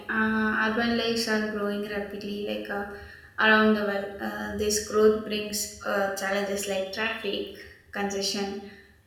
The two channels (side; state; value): both; identical; correlation 1.00